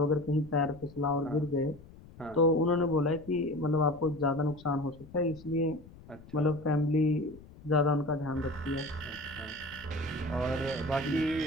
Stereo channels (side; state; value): left; noise; rumble, 20 dB below the sound